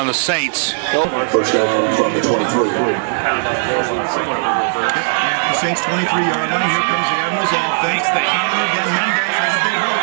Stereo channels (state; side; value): silent; left; 59 dB below the other